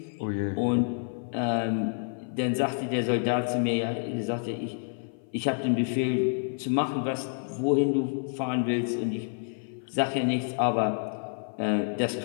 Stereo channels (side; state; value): right; silent; 55 dB below the other